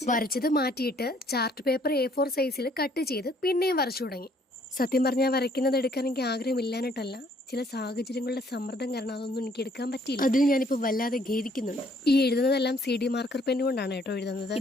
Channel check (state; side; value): normal; both; correlation 0.64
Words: വരച്ചത് മാറ്റിയിട്ട് ചാർട്ട് പേപ്പർ A4 സൈസിൽ കട്ട് ചെയ്ത് പിന്നെയും വരച്ചു തുടങ്ങി. സത്യം പറഞ്ഞാൽ വരയ്ക്കുന്നത് എടുക്കാൻ എനിക്ക് ആഗ്രഹമില്ലാഞ്ഞിട്ടല്ല, ചില സാഹചര്യങ്ങളുടെ സമ്മർദ്ദം കാരണം അതൊന്നും എനിക്ക് എടുക്കാൻ പറ്റിയില്ല. അതിൽ ഞാനിപ്പോൾ വല്ലാതെ ഖേദിക്കുന്നുണ്ട്. ഈ എഴുതുന്നതെല്ലാം CD മാർക്കർ പെൻ കൊണ്ടാണ് കേട്ടോ എഴുതുന്നത്.